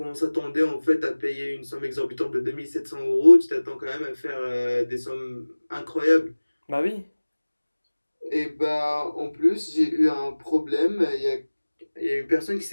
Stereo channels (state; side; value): inverted; both; correlation -1.00